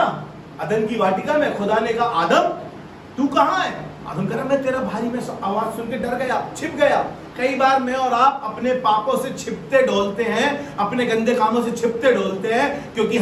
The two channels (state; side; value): identical; both; correlation 1.00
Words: अदन की वाटिका में, खुदा ने कहा आदम तू कहां है? आदम कह रहा मैं तेरा भाई, में आवाज सुन के डर गया, छिप गया। कई बार मैं और आप अपने पापों से छिपते डोलते हैं, अपने गंदे कामों से छिपते डोलते हैं, क्योंकि